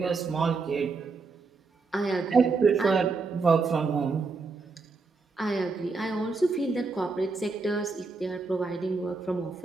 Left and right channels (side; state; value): left; quieter; 4.2 dB